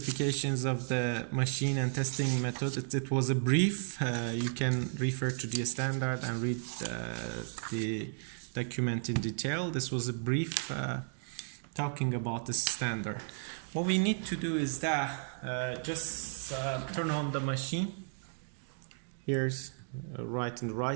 of the machine and testing method. It was a brief. You can refer to the standard and read the document in detail. This was a brief talking about the standard. What we need to do is that just turn on the machine. Here's right on the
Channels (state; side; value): silent; left; digital silence